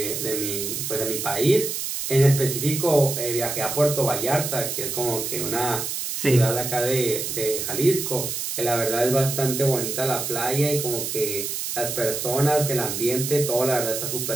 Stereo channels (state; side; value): noise; right; hiss, 3 dB below the sound